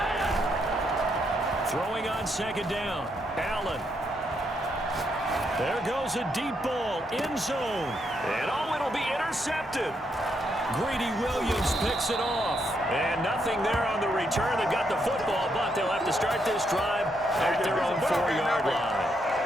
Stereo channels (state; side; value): normal; both; correlation 0.77